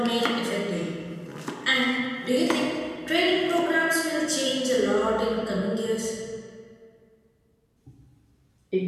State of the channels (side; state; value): both; identical; correlation 1.00